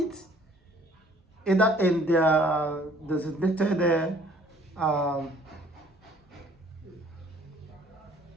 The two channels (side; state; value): both; normal; correlation 0.57